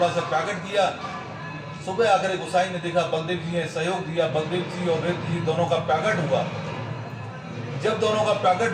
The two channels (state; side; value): identical; both; correlation 1.00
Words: सा प्रकट किया। सुबह आकर गोसाई ने देखा बलदेव जी ने सहयोग दिया, बलदेव जी और रेत जी दोनों का प्रकट हुआ। जब दोनों का